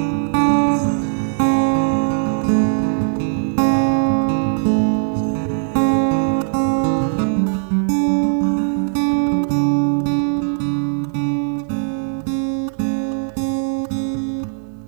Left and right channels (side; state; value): left; silent; digital silence